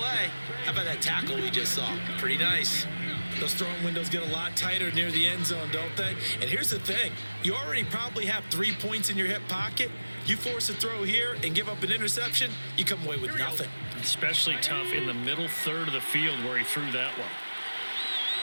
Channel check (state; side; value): inverted; both; correlation -1.00